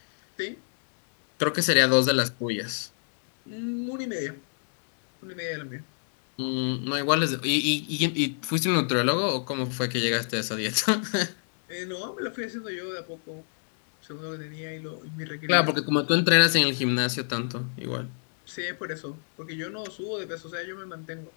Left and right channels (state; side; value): silent; right; digital silence